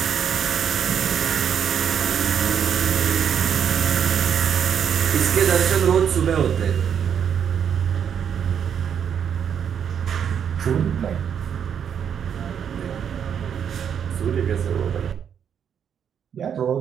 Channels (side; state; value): left; quieter; 8.1 dB